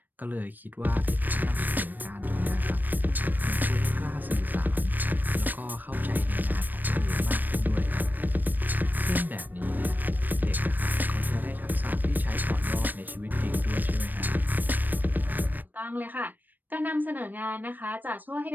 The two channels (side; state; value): left; late; 0.089 ms